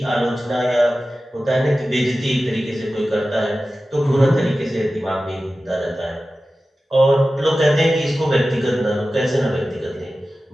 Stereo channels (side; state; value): both; normal; correlation 0.95